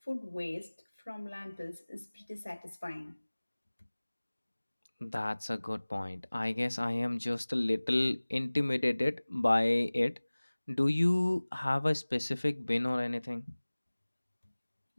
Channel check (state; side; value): inverted; both; correlation -1.00